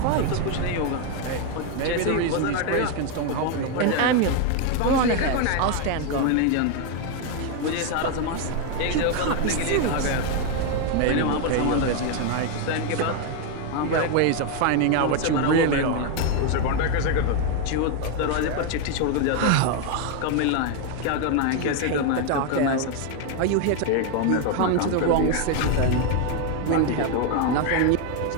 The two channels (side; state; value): both; different; correlation 0.01